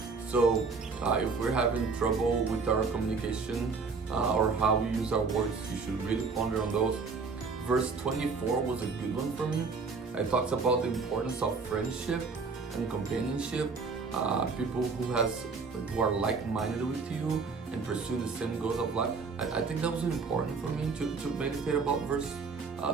So if we're having trouble with our communication or how we use our words, you should really ponder on those. Verse 24 was a good one for me. It talks about the importance of friendship and companionship. People who are like-minded with you and pursue the same goals of life. I think that was important for me to meditate about verse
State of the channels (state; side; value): quieter; left; 4.6 dB